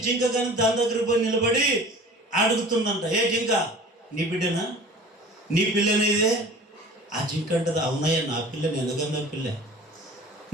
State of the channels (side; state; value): both; normal; correlation 0.43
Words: జింక కానీ దాని దగ్గరికి పోయి నిలబడి అడుగుతుందంట, ఏ జింక నీ బిడ్డనా, నీ పిల్లనేదే? ఆ జింక అంటది, అవునాయా నా పిల్ల, నేను పిల్ల.